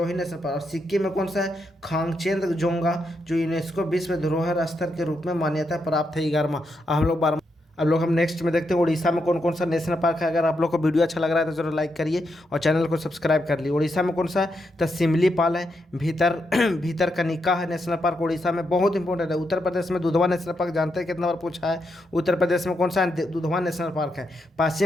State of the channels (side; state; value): both; normal; correlation 0.82